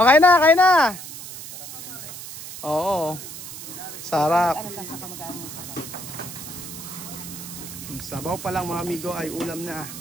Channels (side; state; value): right; noise; hiss, 11 dB below the sound